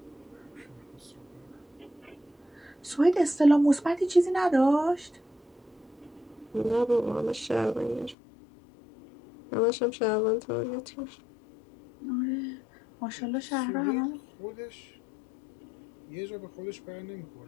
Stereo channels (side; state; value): right; drops out; at 8.2 s